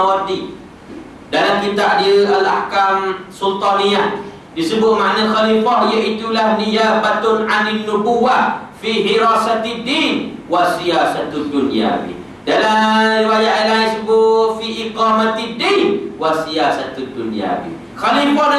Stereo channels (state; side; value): identical; both; correlation 1.00